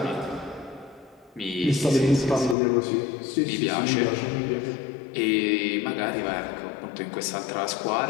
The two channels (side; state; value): right; drops out; at 2.6 s